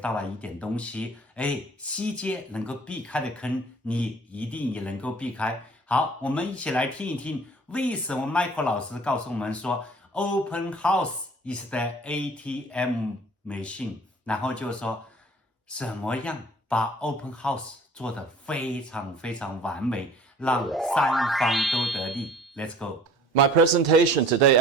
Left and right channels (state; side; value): normal; both; correlation 0.49